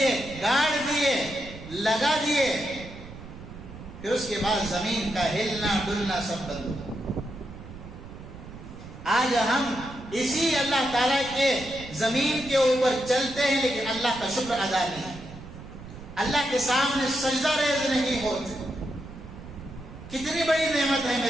گاڑ دیے، لگا دیے۔ پھر اس کے بعد زمین کا ہلنا ڈلنا سب بند ہو۔ آج ہم اسی اللہ تعالیٰ کے زمین کے اوپر چلتے ہیں، لیکن اللہ کا شکر ادا نہیں، اللہ کے سامنے سجدہ ریز نہیں ہوتے۔ کتنی بڑی نعمت ہے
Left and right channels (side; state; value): right; noise; rumble, 15 dB below the sound